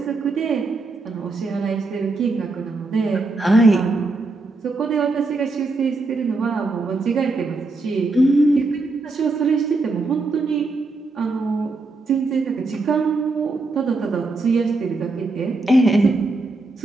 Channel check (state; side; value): quieter; left; 3.4 dB